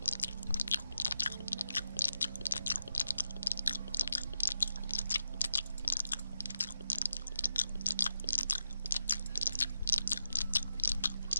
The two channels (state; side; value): inverted; both; correlation -0.88